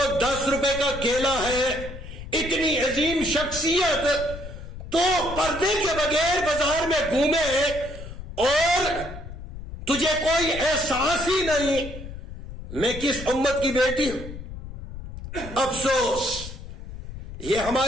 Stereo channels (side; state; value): left; noise; rumble, 11 dB below the sound